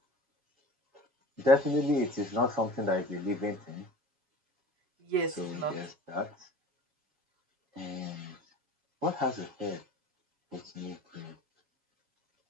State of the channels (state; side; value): late; left; 7.2 ms